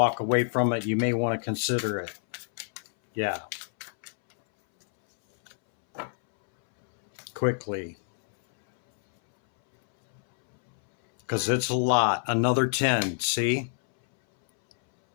away from it, you may want to consider it. Yeah. Quickly. Because it's a lot. Another 10. See?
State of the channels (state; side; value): silent; right; 61 dB below the other